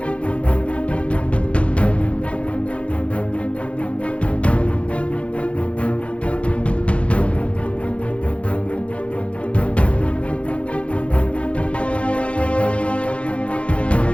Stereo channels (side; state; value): right; late; 0.061 ms